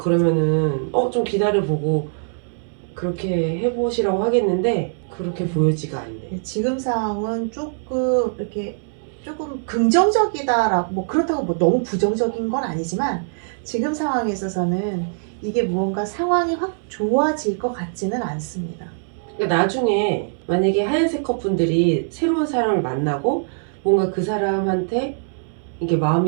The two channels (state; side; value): silent; left; 64 dB below the other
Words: 좀 기다려보고 그렇게 해보시라고 하겠는데 그렇게 보여지가 않네. 지금 상황은 조금 이렇게 조금 긍정적이다라고, 뭐 그렇다고 뭐 너무 부정적인 건 아니지만 지금 상황에 있어서는 이게 무언가 상황이 확 좋아질 것 같지는 않습니다. 그러니까 나중에 만약에 하얀색 컵분들이 새로운 사람을 만나고 뭔가 그 사람한테 이게